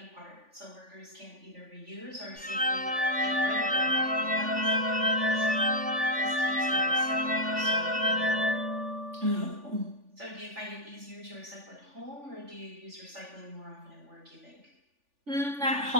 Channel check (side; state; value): left; late; 3.4 ms